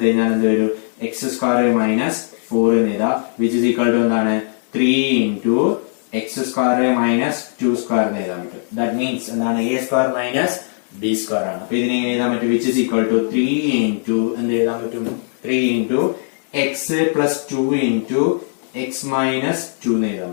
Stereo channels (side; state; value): right; silent; digital silence